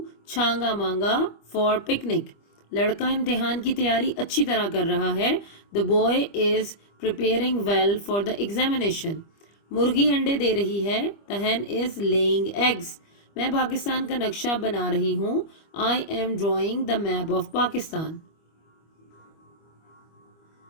Changa Manga for picnic. लड़का इम्तिहान की तैयारी अच्छी तरह कर रहा है। The boy is preparing well for the examination. मुर्गी अंडे दे रही है। The hen is laying eggs. मैं पाकिस्तान का नक्शा बना रही हूँ। I am drawing the map of Pakistan.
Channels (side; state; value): right; late; 25 ms